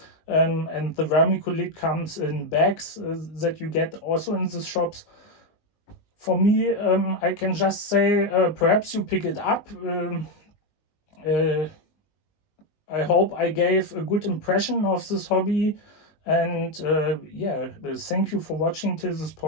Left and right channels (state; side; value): late; right; 19 ms